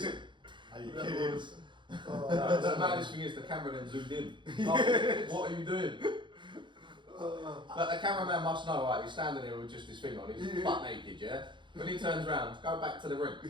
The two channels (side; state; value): left; late; 0.23 ms